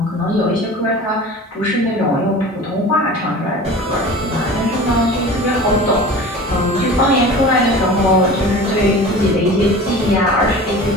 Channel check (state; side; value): normal; both; correlation 0.38